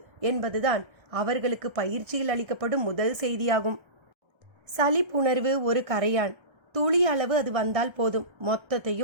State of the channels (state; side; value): late; left; 1.3 ms